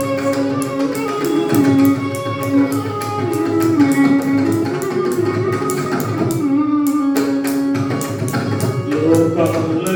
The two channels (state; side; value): identical; both; correlation 1.00